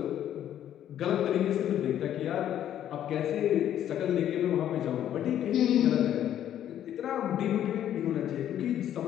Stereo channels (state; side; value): quieter; right; 10.9 dB